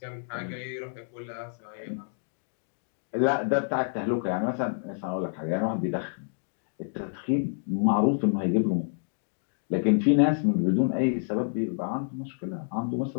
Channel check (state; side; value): silent; right; digital silence